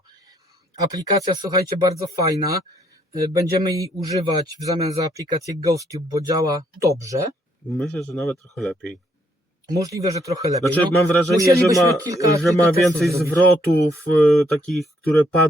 Aplikacja, słuchajcie, bardzo fajna. Będziemy jej używać w zamian za aplikację GhostTube, bo działa dobrze. Myślę, że nawet trochę lepiej. Możliwe, że trochę lepiej. Znaczy, No, mam wrażenie, musielibyśmy kilka że ma testów więcej zrobić. zwrotów takich, które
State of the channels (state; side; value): normal; both; correlation 0.70